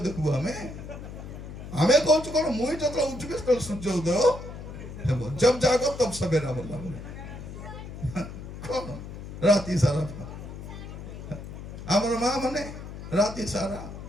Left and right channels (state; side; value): noise; left; hum, 11 dB below the sound